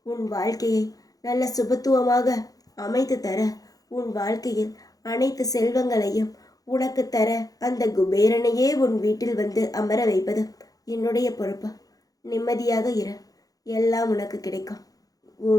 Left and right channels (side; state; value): right; late; 0.18 ms